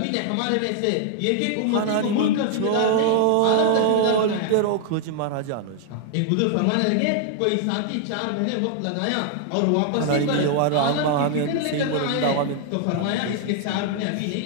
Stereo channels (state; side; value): different; both; correlation 0.00